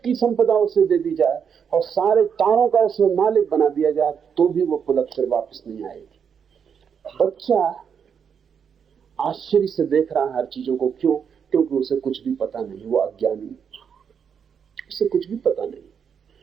की संपदा उसे दे दी जाए और सारे तारों का उसे मालिक बना दिया जाए तो भी वो पुलक फिर वापस नहीं आएगी। बच्चा आश्चर्य से देख रहा है हर चीजों को। क्यों? क्योंकि उसे कुछ भी पता नहीं, वो अज्ञानी, उसे कुछ भी पता नहीं।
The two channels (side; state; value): left; quieter; 7.2 dB